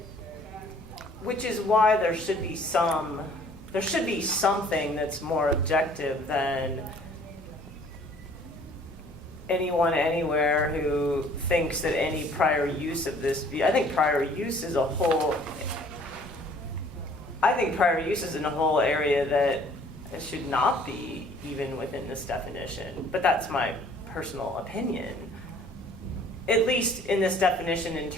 which is why there should be something that's more objective than anyone anywhere who thinks that any prior use of this, I think prior use is a whole, in a whole area that should not be even within this definition, but that's my personal opinion. At least in this definition in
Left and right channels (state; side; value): normal; both; correlation 0.55